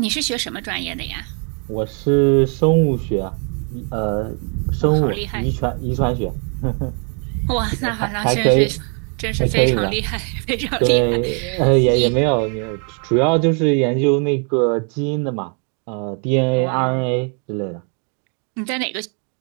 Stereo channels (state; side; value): quieter; left; 39.9 dB